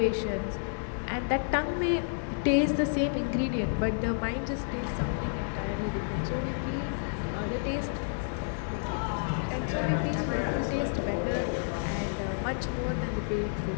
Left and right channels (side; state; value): right; silent; digital silence